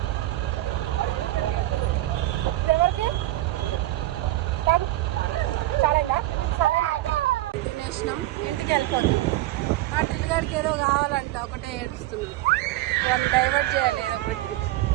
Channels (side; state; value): left; quieter; 16.4 dB